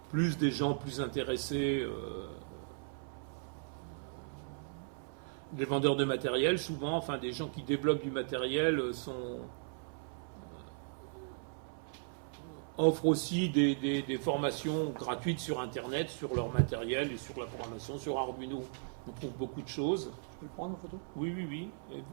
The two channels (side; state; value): left; silent; 53 dB below the other